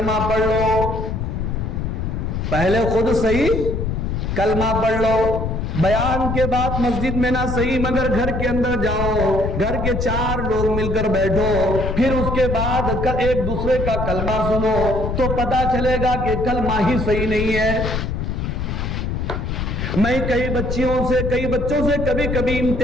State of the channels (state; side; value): noise; left; rumble, 2 dB below the sound